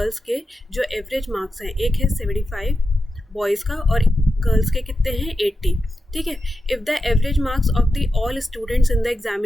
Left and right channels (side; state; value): both; normal; correlation 0.90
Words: के जो एवरेज मार्क्स हैं, एक है 75 बॉयज़ का और गर्ल्स के कितने हैं? 80। ठीक है, if the average marks of the all students in the